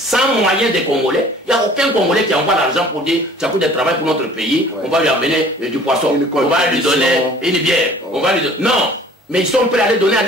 moyens des Congolais. Il n'y a aucun Congolais qui envoie l'argent pour dire Tchakoudia travaille pour notre pays. On va lui amener du poisson. On va lui donner une bière. On va lui donner... Non. Mais ils sont prêts à les donner à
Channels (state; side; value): normal; both; correlation 0.50